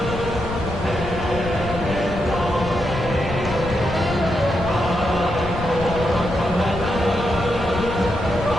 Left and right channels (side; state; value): left; noise; rumble, 8 dB below the sound